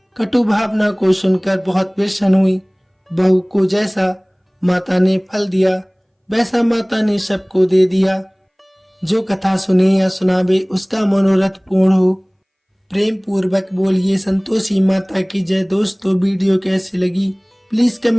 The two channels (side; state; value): both; identical; correlation 1.00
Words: कटु भावना को सुनकर बहुत प्रसन्न हुई। बहू को जैसा माता ने फल दिया वैसा माता ने सबको दे दिया। जो कथा सुने या सुनावे उसका मनोरथ पूर्ण हो। प्रेम पूर्वक बोलिए संतोषी माता की जय। दोस्तों, वीडियो कैसी लगी प्लीज